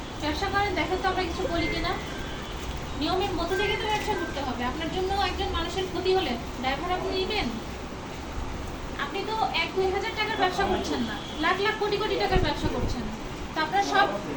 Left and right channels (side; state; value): both; identical; correlation 1.00